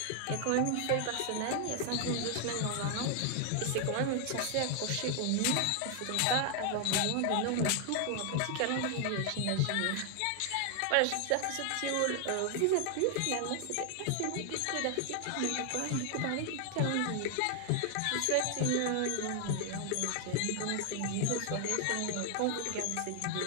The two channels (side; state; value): both; different; correlation 0.00